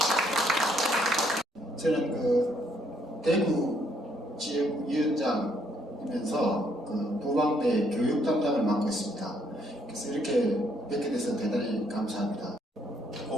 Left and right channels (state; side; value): normal; both; correlation 0.69